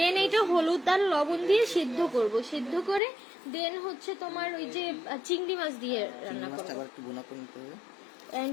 এইটা হলুদ আর লবণ দিয়ে সিদ্ধ করব, সিদ্ধ করে দেন হচ্ছে তোমার ওই যে চিংড়ি মাছ দিয়ে রান্না করব।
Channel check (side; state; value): right; drops out; at 3.0 s